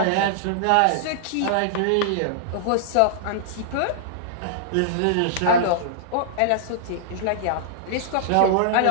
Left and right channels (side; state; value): both; different; correlation -0.01